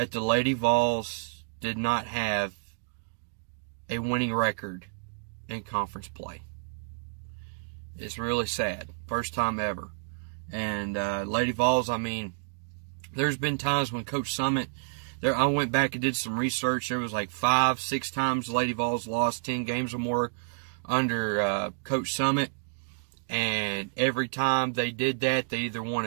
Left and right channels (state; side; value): silent; left; digital silence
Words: the Lady Vols did not have a winning record in conference play. It's really sad. First time ever. And Lady Vols, I mean, there's been times when Coach Summit, I went back and did some research. There was like 5-6 times Lady Vols lost 10 games or more under Coach Summit. And every time they did that, they either won